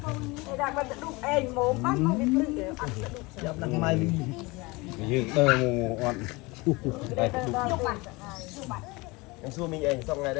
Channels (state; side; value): quieter; right; 24.4 dB